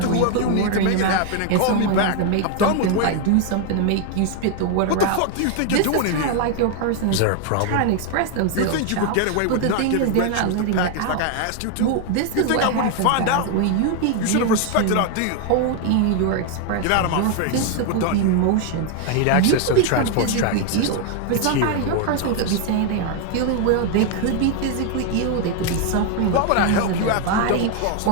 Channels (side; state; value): both; different; correlation 0.01